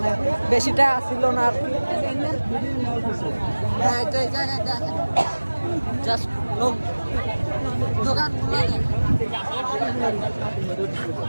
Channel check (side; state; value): both; inverted; correlation -1.00